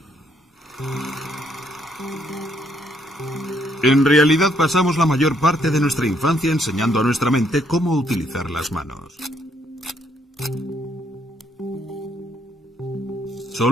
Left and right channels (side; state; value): both; normal; correlation 0.71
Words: En realidad pasamos la mayor parte de nuestra infancia enseñando a nuestra mente cómo utilizar las manos.